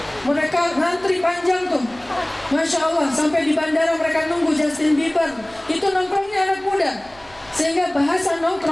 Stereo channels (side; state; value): right; noise; rumble, 27 dB below the sound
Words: Mereka ngantri panjang tuh, Masya Allah, sampai di bandara mereka nunggu Justin Bieber. Itu nongkrongnya anak muda. Sehingga bahasa